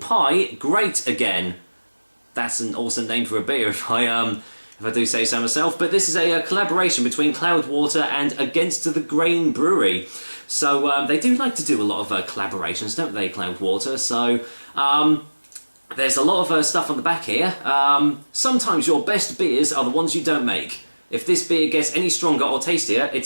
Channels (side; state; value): both; inverted; correlation -1.00